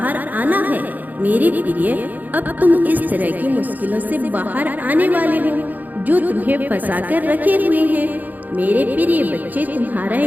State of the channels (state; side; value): late; left; 0.082 ms